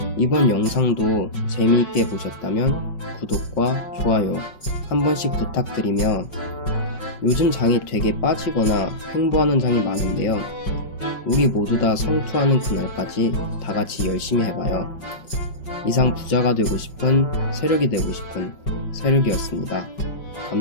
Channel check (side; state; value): right; late; 5.4 ms